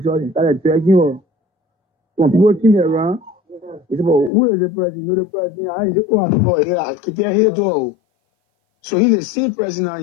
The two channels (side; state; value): right; drops out; at 4.3 s